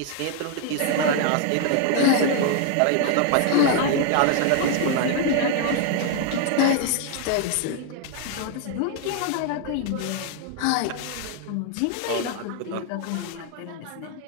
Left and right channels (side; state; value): both; different; correlation 0.01